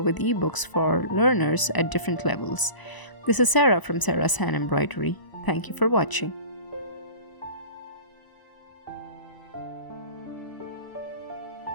with ebooks for learners at different levels. This is Sarah from Sarah's Hand Embroidery. Thank you for watching.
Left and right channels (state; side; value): late; right; 1.0 ms